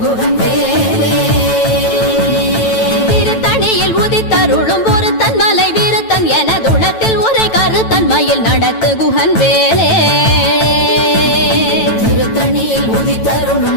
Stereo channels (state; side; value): late; right; 9.1 ms